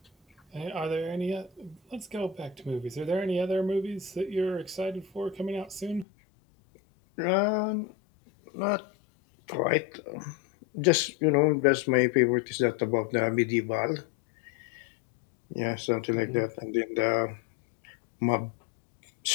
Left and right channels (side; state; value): right; drops out; at 6.1 s